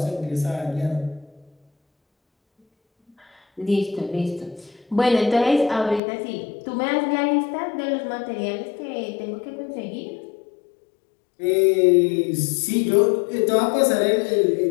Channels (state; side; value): drops out; right; at 6.0 s